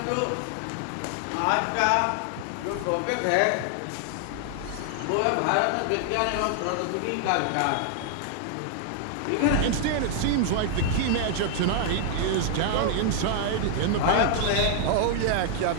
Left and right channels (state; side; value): different; both; correlation 0.00